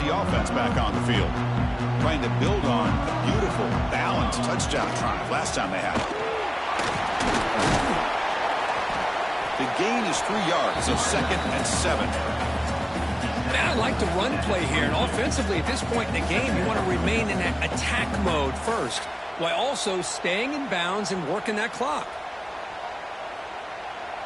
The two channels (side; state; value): both; identical; correlation 1.00